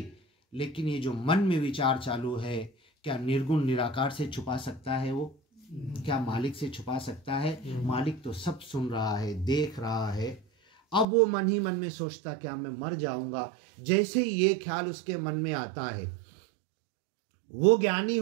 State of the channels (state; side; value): drops out; left; at 11.1 s